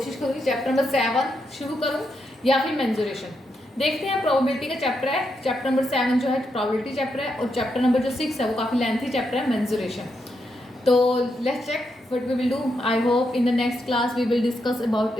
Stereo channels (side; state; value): both; normal; correlation 0.82